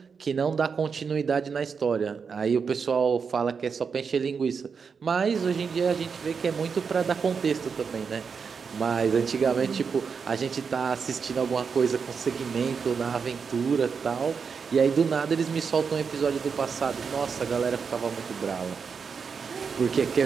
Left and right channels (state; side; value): quieter; left; 5.8 dB